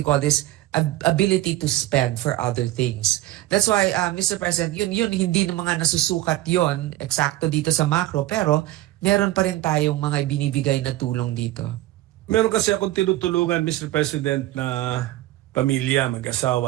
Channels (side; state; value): left; quieter; 16.0 dB